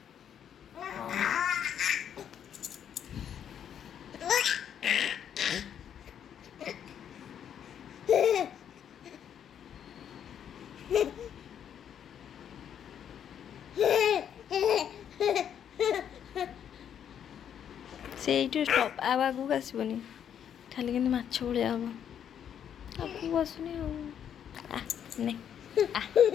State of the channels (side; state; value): right; quieter; 9.0 dB